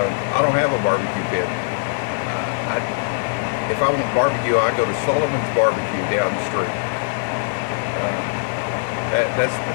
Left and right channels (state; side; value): silent; right; digital silence